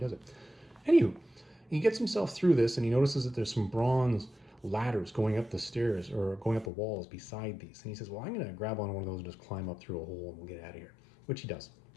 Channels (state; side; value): drops out; right; at 6.7 s